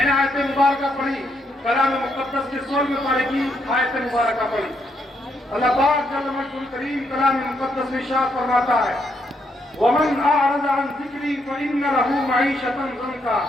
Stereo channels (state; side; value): normal; both; correlation 0.76